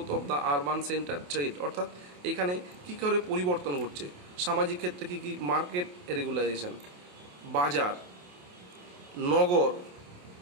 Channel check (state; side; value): late; left; 28 ms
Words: of the urban center, trade, অর্থাৎ এখানে কী করে পরিবর্তন ঘটছে, সামাজিক ক্ষেত্রে কী কী, মার্কেট রেগুলাইজেশন, বাজার, নগর,